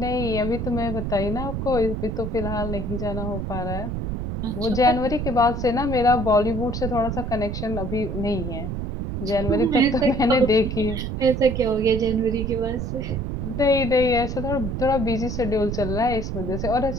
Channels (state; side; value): noise; right; rumble, 4 dB below the sound